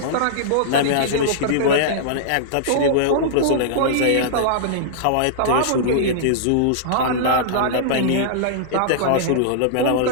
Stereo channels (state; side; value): different; both; correlation -0.02